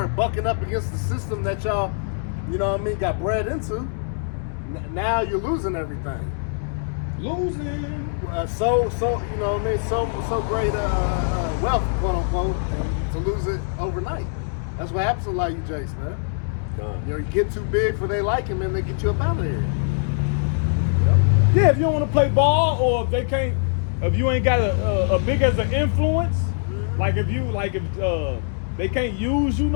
bucking up against the system that y'all, you know what I mean, got bred into. Now you're losing everything. Losing. So you know what I mean, so great wealth, quote unquote, and to lose it overnight. That's what happens to a lot of you jakes, man. You know, you get too big for they liking, and they get you up out of here. Yeah, if you don't want to play ball, or if they can't, if you ain't got a big as an influence, like if they can't use you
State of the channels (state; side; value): silent; right; digital silence